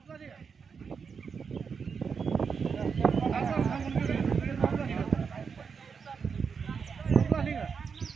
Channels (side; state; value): left; quieter; 5.9 dB